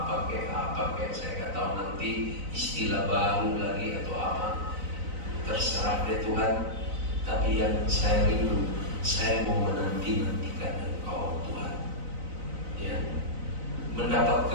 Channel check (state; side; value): late; left; 4.0 ms